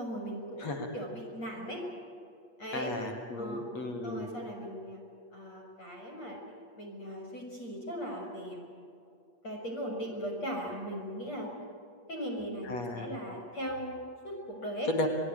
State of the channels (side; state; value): right; late; 8.4 ms